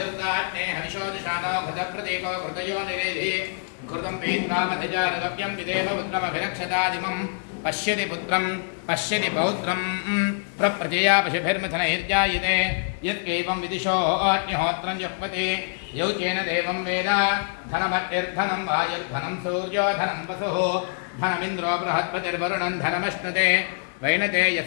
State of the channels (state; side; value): silent; right; digital silence